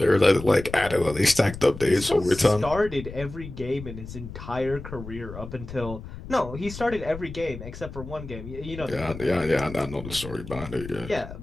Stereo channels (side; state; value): left; noise; rumble, 12 dB below the sound